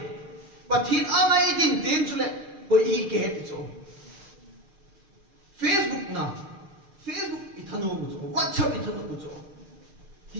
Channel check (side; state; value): left; late; 6.6 ms